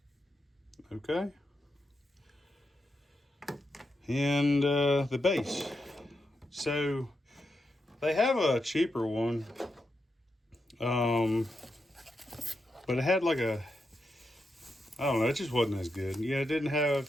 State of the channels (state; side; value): normal; both; correlation 0.85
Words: Okay. And the base. So they have a cheaper one. But it had like I don't know, it just wasn't as good. Yeah, it